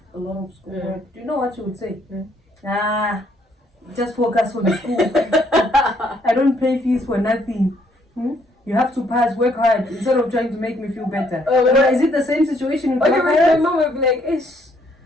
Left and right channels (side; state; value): both; normal; correlation 0.68